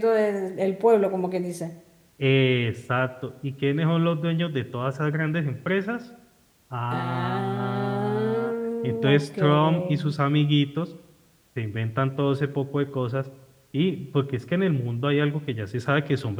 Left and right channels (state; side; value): identical; both; correlation 1.00